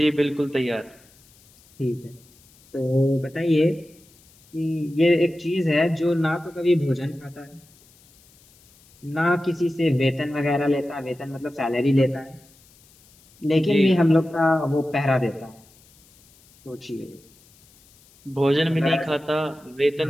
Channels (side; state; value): left; noise; hiss, 29 dB below the sound